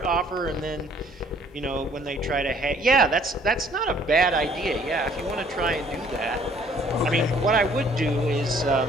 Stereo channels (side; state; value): both; normal; correlation 0.59